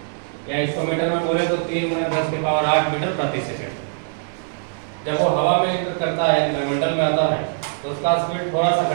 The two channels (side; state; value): left; silent; 64 dB below the other